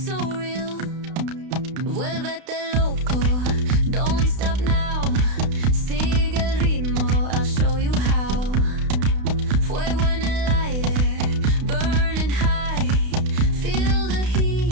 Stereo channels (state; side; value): late; left; 32 ms